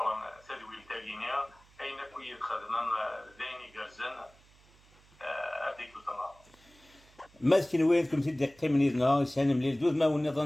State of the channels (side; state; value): right; noise; hum, 28 dB below the sound